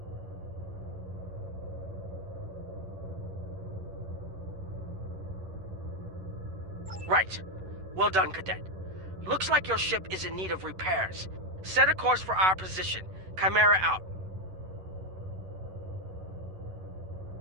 Right. Well done, Cadet. Looks like your ship is in need of repairs. Set a course for our position. Chimera out.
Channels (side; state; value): left; late; 11 ms